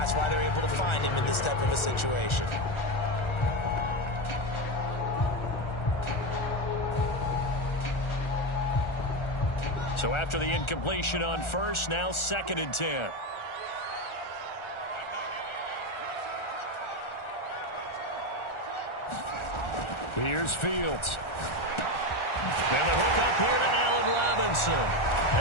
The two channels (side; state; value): right; late; 1.4 ms